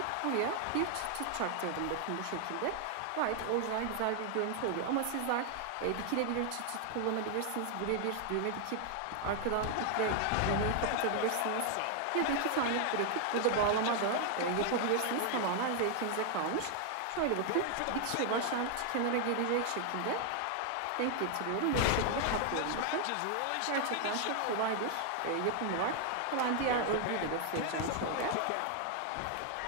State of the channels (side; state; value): both; different; correlation 0.00